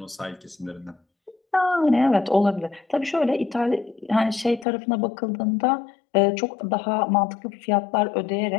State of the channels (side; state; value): right; drops out; at 4.7 s